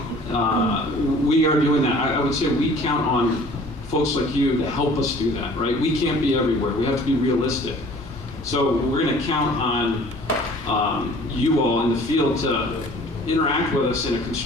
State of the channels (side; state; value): both; normal; correlation 0.50